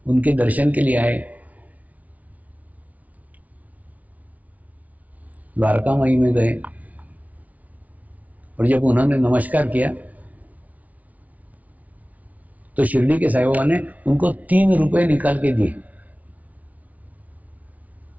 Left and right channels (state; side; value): late; left; 0.071 ms